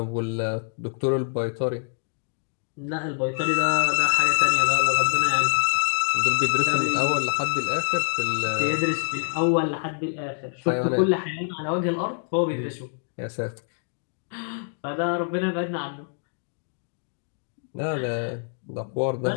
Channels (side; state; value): right; silent; 61 dB below the other